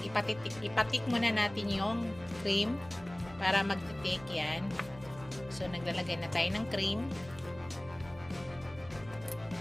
ipatik muna natin yung cream para magtitik yan. So naglalagay na tayo ng cream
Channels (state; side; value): noise; right; hum, 19 dB below the sound